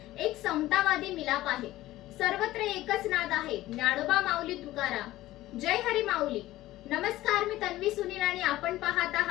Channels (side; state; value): right; quieter; 16.1 dB